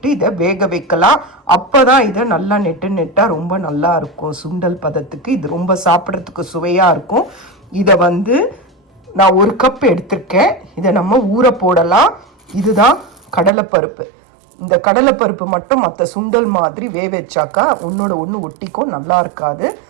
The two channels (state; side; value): drops out; left; at 13.5 s